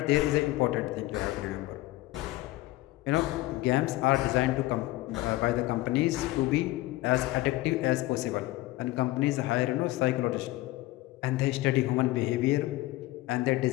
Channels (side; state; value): right; quieter; 18.1 dB